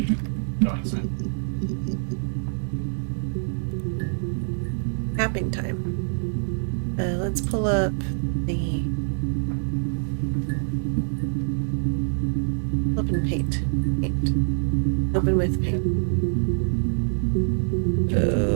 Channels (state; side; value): silent; left; digital silence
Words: going soon. Tapping time. Let's pull up the open paint. Open with paint.